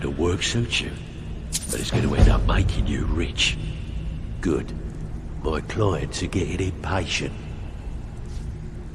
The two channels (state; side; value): identical; both; correlation 1.00